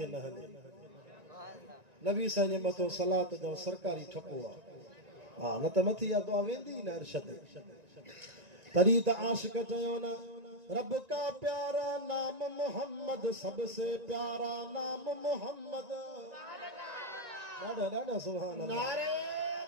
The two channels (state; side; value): late; left; 1.9 ms